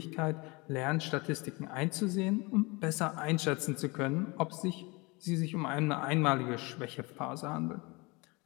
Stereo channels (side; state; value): right; quieter; 26.2 dB